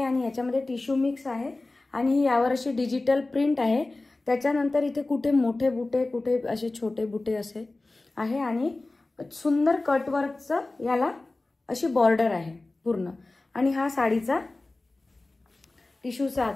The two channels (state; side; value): quieter; right; 3.1 dB